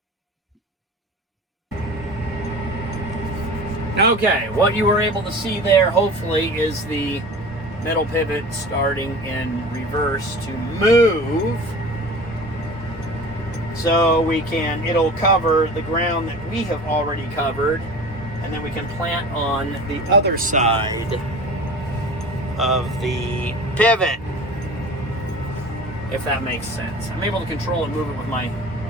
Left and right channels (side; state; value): both; normal; correlation 0.38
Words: Okay, what you were able to see there, hopefully, is the middle pivot starting in reverse to move. So it'll cover the ground that we have already covered, and then we can plant on the other side of the pivot, if that makes sense. I'm able to control and move it with my